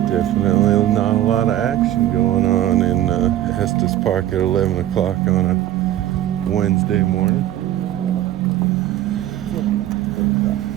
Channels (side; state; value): left; quieter; 12.8 dB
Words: definitely not a lot of action going on in Estes Park at 11 o'clock on a Wednesday morning.